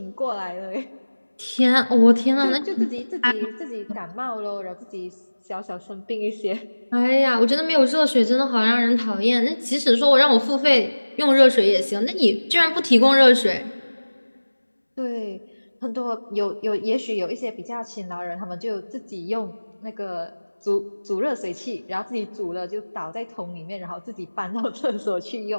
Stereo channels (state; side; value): inverted; both; correlation -1.00